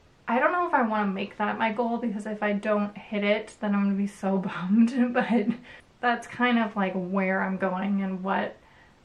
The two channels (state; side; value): identical; both; correlation 1.00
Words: I don't know if I want to make that my goal, because if I don't hit it, then I'm going to be so bummed. But that's kind of like where I'm going and what